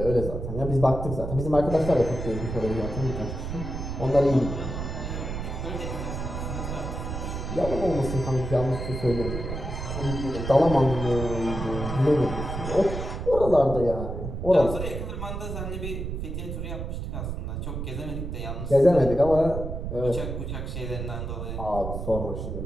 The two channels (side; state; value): right; noise; rumble, 5 dB below the sound